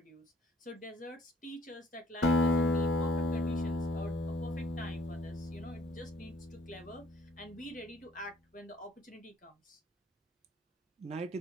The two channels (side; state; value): both; normal; correlation 0.60